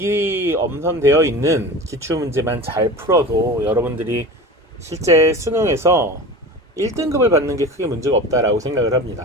엄선되어 있는 기출문제만 잘 풀어도 여러분들이 실제 수능에서 1등급을 받는 게 크게 문제가 없다라고 생각을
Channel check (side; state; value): both; normal; correlation 0.34